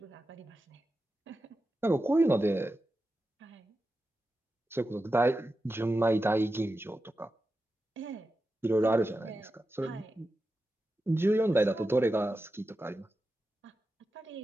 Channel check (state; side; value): normal; both; correlation 0.91